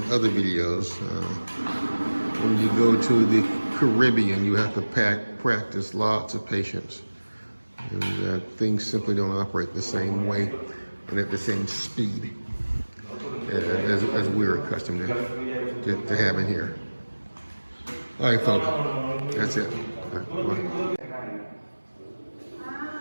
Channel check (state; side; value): inverted; both; correlation -1.00